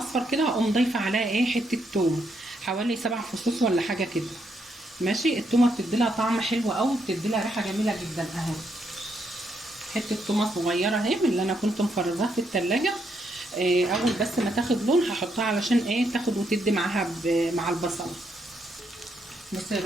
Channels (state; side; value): normal; both; correlation 0.77